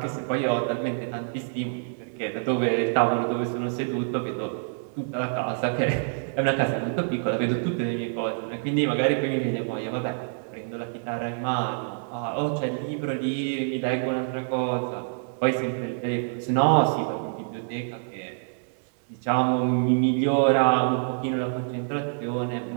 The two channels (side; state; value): left; silent; 61 dB below the other